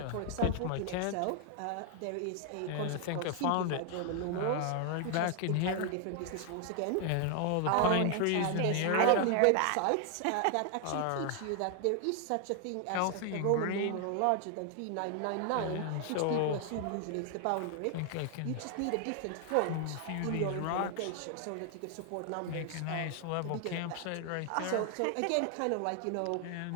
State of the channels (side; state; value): both; different; correlation 0.00